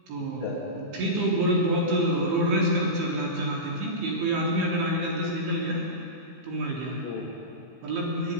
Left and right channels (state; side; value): late; left; 16 ms